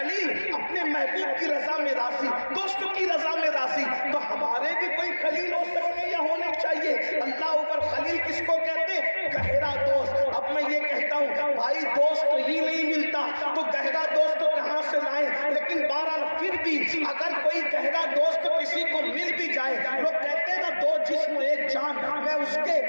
اپنے محبوب کی رضا میں راضی، دوستوں کی رضا میں راضی، تو ہمارے بھی کوئی خلیل ہو سکتے یا ہونے چاہیے. اللہ اوپر خلیل کس کو کہتے؟ گہرا دوست. اب میں یہ کہتا ہوں بھائی دوست ہی نہیں ملتا تو گہرا دوست کہاں سے لائیں؟ لیکن بہرحال پھر بھی اگر کوئی گہرا دوست کسی کو مل بھی جائے، لوگ کہتے ہیں نا دو جسم ایک جان، میں اس کے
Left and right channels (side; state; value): both; inverted; correlation -1.00